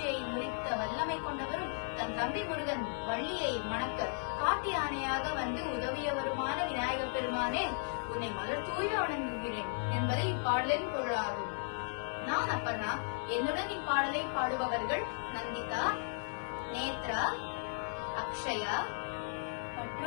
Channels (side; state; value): right; silent; 54 dB below the other